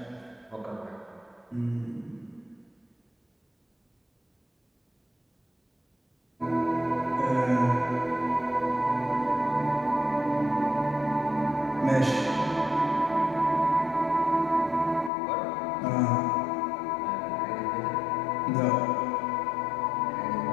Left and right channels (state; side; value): drops out; right; at 15.1 s